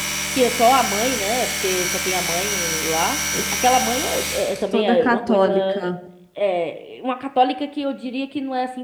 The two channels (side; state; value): both; identical; correlation 1.00